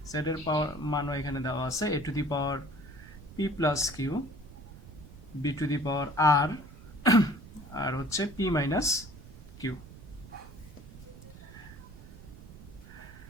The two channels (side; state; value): right; noise; rumble, 16 dB below the sound